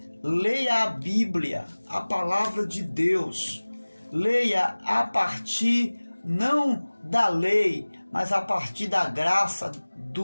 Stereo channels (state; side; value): inverted; both; correlation -1.00